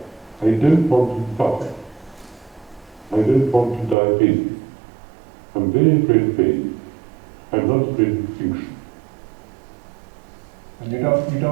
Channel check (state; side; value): drops out; left; at 4.0 s